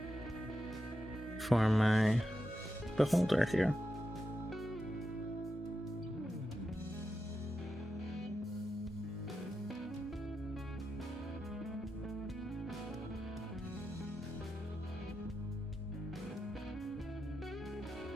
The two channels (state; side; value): normal; both; correlation 0.88